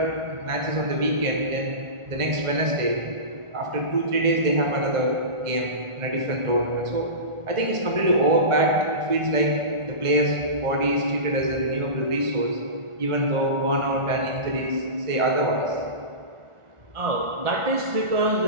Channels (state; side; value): late; left; 1.4 ms